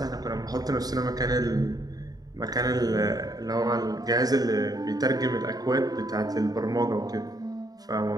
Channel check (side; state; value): left; late; 0.18 ms